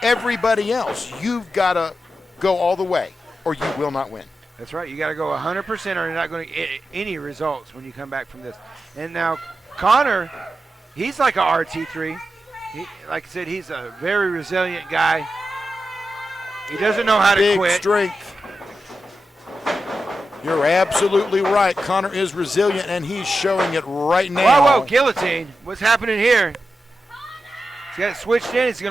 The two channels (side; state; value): both; normal; correlation 0.90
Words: everybody else. You've got to go all the way, or you will not win. That's right. You got to go 100%, or you're not going to get any results when you come back from this. And now Connor, he's like a RT3. Like I said, he's a very resilient guy. He doesn't know how to quit. Big strength. You're absolutely right. Connor is resilient, and he's showing it right now. Whoa, guillotine. What's happening here? He's got it switched in. He's